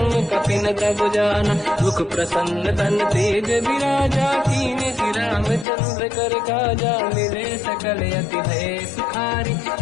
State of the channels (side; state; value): right; drops out; at 5.7 s